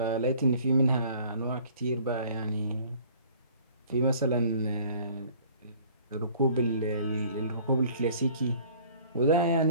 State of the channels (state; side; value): inverted; both; correlation -0.53